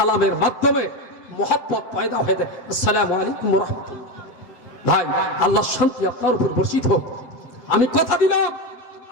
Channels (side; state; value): right; late; 7.6 ms